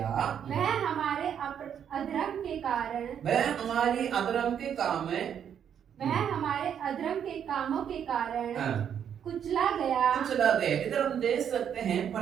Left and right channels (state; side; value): quieter; left; 8.6 dB